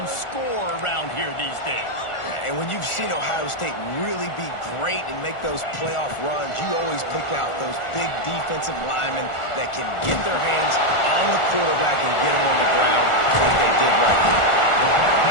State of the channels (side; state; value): right; late; 1.4 ms